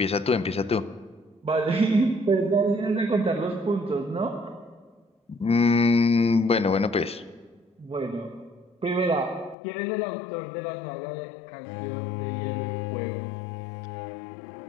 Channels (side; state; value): right; drops out; at 9.6 s